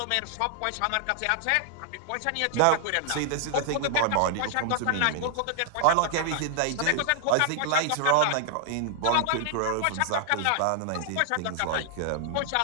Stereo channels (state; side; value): different; both; correlation 0.00